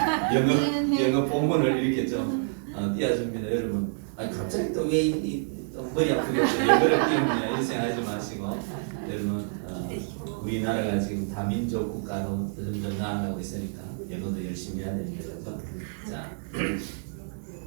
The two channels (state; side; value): silent; left; digital silence